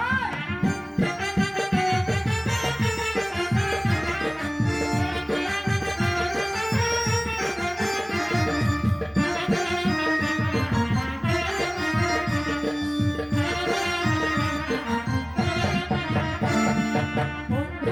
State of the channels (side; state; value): both; identical; correlation 1.00